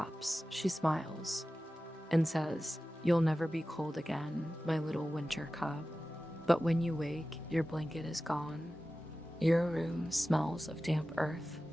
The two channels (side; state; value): both; normal; correlation 0.95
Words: she smiles, and says, "You'll never be cold again, my little winter cub." But when you wake, your blanket is gone. Your room smells of damp earth,